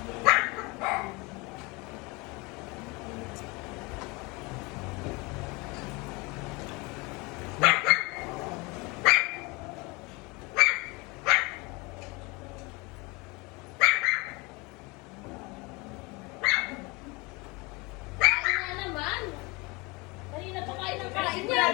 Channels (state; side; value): quieter; right; 26.2 dB